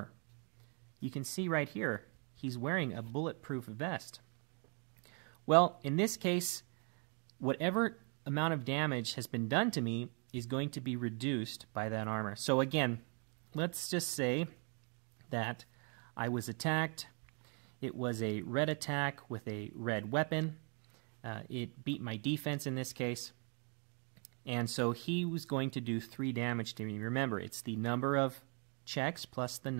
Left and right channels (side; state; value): left; quieter; 38.3 dB